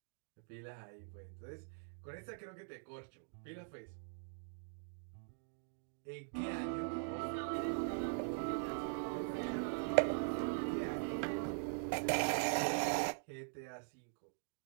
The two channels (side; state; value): left; silent; digital silence